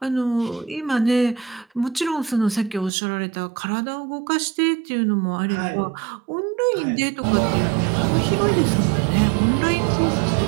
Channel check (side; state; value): left; drops out; at 2.9 s